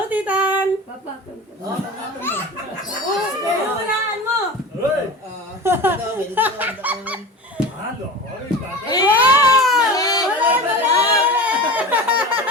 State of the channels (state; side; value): normal; both; correlation 0.32